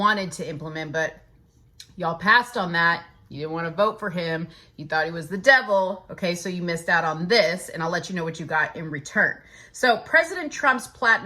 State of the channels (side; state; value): both; identical; correlation 1.00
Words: to implement, but y'all passed on that. You didn't want to vote for him. You thought he was the devil. Okay, so you missed out on this, and I'll let you know what you got in return. So President Trump's